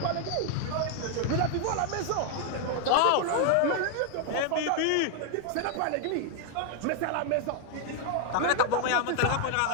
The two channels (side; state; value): both; different; correlation 0.00